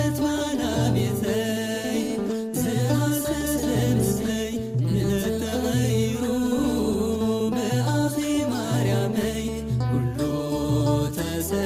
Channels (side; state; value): both; identical; correlation 1.00